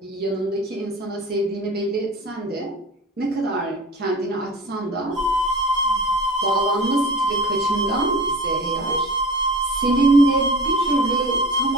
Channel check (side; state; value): both; normal; correlation 0.36